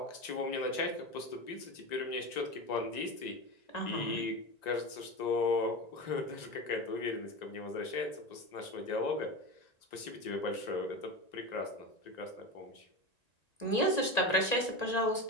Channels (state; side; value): late; right; 1.9 ms